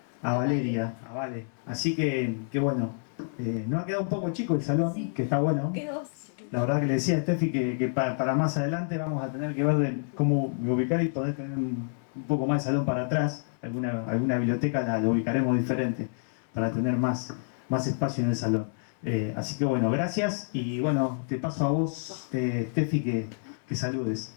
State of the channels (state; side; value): silent; right; 59 dB below the other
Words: Valeria, a Vale. Así que bueno, nos ha quedado un poco chico el salón, Sí. que está bueno. Quedó. La verdad que le decía a Steffi que para más adelante vamos a tener que ver cómo ubicar y poder tener un poco más de salón para atrás. Alguna biblioteca la ubicaremos diferente para tener más espacio en el salón. Así que bueno, gracias y bueno, te paso a vos, Steffi, que saludes.